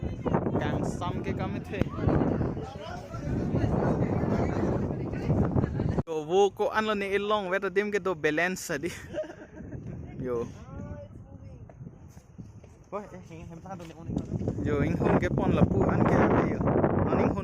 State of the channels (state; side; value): identical; both; correlation 1.00